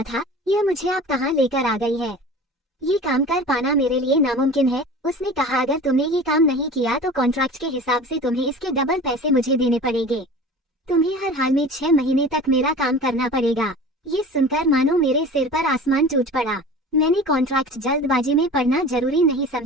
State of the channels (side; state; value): both; normal; correlation 0.38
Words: था, यह मुझे आप कहाँ लेकर आ गई है। ये काम कर पाना मेरे लिए नामुमकिन है। उसने कहा, अगर तुमने ये काम नहीं किया तो कॉन्ट्रैक्ट के हिसाब से तुम्हें इसके डबल पैसे मुझे देने पड़ेंगे। तुम्हें हर हाल में 6 महीने तक मेरा काम करना पड़ेगा। ये सुनकर मानो मेरे सिर पर आसमान टूट पड़ा। मैंने कॉन्ट्रैक्ट जल्दबाजी में पढ़ना जरूरी नहीं